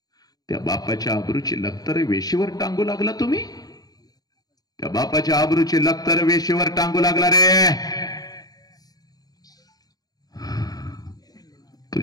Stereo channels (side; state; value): right; late; 0.18 ms